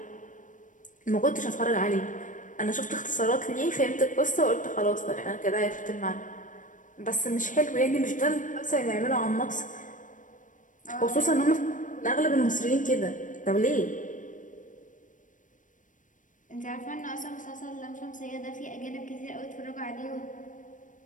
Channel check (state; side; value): late; right; 0.37 ms